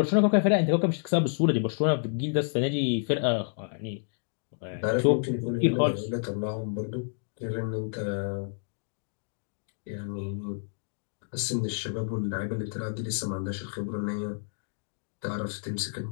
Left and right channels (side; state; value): right; silent; digital silence